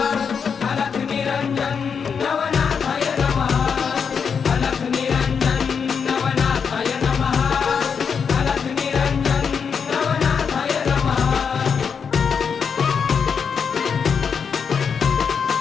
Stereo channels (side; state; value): right; quieter; 6.4 dB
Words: अलख निरंजन नवनाथाय नमः, अलख निरंजन नवनाथाय नमः, अलख निरंजन नवनाथाय नमः।